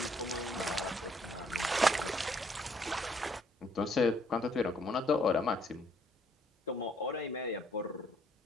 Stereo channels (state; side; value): normal; both; correlation 0.66